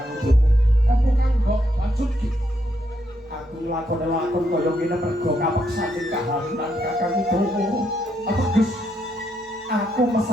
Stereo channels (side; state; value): both; normal; correlation 0.77